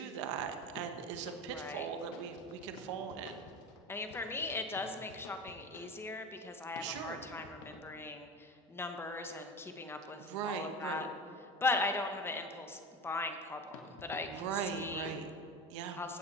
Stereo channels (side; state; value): both; normal; correlation 0.28